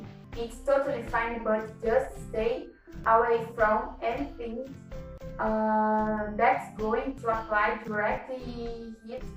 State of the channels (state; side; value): identical; both; correlation 1.00